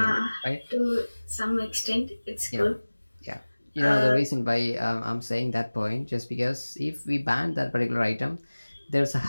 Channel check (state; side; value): inverted; both; correlation -1.00